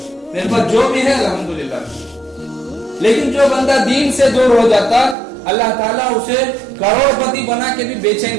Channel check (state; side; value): drops out; left; at 5.2 s